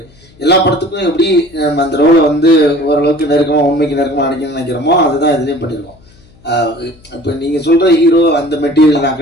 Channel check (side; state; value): left; noise; hum, 28 dB below the sound